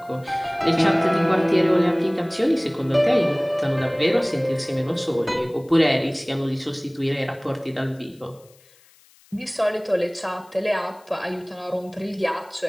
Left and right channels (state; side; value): noise; left; hiss, 29 dB below the sound